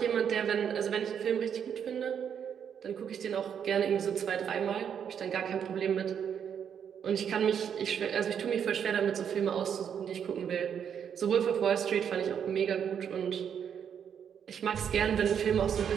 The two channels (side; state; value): left; quieter; 8.1 dB